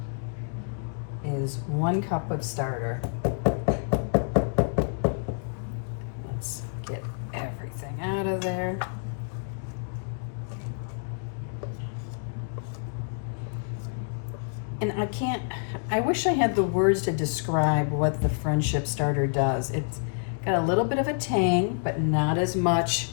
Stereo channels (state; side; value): silent; right; digital silence